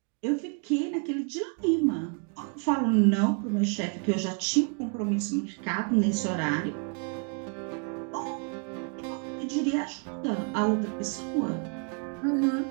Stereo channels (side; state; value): left; quieter; 37.8 dB